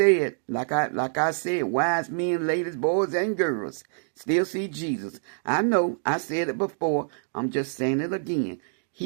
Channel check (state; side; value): silent; left; digital silence